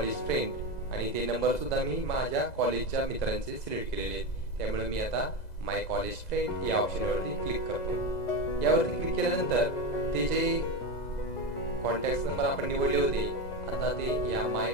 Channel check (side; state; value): right; late; 2.0 ms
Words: फ्रेंड, आणि ते नंबर सुद्धा मी माझ्या कॉलेजच्या मित्रांचे सिलेक्ट केलेले आहेत. त्यामुळे मी आता माय कॉलेज फ्रेंड या ऑप्शनवरती क्लिक करतो. यावरती क्लिक केल्यानंतर ते जे कॉन्टॅक्ट नंबर आपण निवडले होते, आता ते या माय